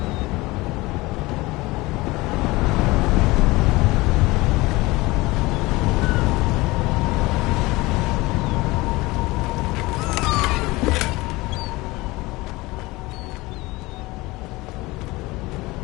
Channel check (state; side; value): quieter; right; 21.4 dB